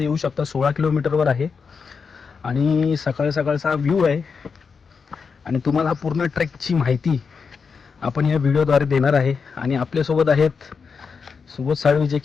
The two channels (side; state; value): right; quieter; 5.5 dB